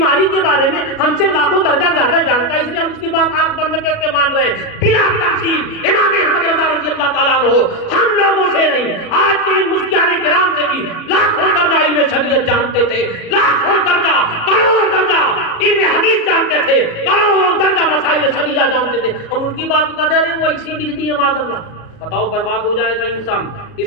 کے بارے میں ہم سے لاکھوں درجہ زیادہ جانتا ہے, اس لیے ہم اس کی بات آنکھ بند کر کے مان رہے ہیں بلا تفصیل. امام احمد رضا رضی اللہ تعالیٰ عنہ ہم لوگوں سے نہیں, آج کے مفتیان کرام سے بھی لاکھوں درجہ علم شریعت جانتے تھے, لاکھوں درجہ, کروڑوں درجہ علم حدیث جانتے تھے, کروڑوں درجہ مسائل شریعہ جانتے تھے. ہم ان کی بات کو کہتے ہیں وہ ایسی لکھ دی ہے معاذ اللہ. بتاؤ برباد ہو جائے گا انسان.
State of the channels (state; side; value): late; right; 37 ms